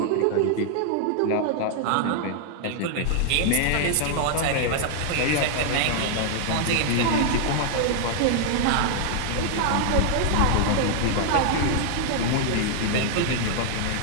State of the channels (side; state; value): both; different; correlation -0.01